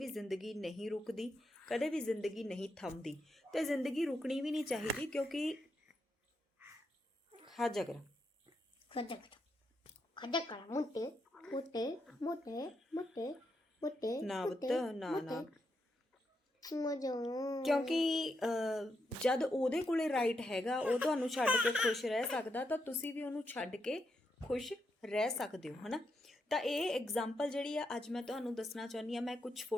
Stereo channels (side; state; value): both; normal; correlation 0.82